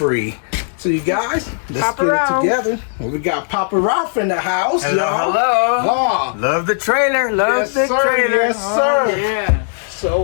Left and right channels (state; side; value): silent; right; digital silence